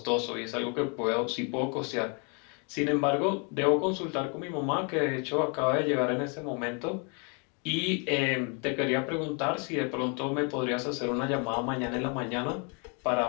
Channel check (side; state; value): right; quieter; 36.1 dB